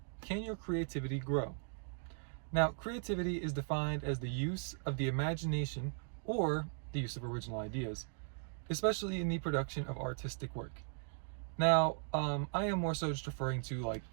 can your creativity grow? Now, creativity is defined as the use of the imagination or the use of original ideas, especially in the production of artistic work. Now, I am more so just referring to like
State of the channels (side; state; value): left; silent; 52 dB below the other